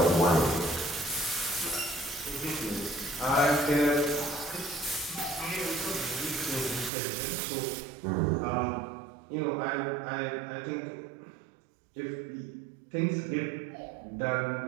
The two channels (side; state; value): left; drops out; at 6.9 s